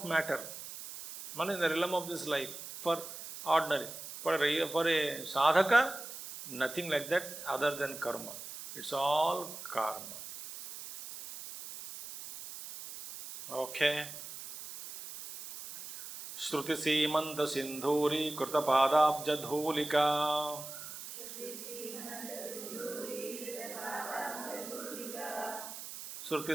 matter, not in the realm of this life, for ordinary. For a sadhaka, nothing like that other than karma. It's all karma. Okay. Shruti Simanta Sindhuri Krita Padabja Dhulika. Shruti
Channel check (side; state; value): right; noise; hiss, 11 dB below the sound